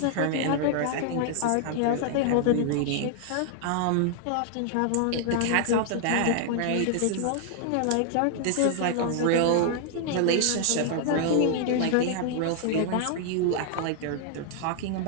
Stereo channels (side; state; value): both; different; correlation 0.00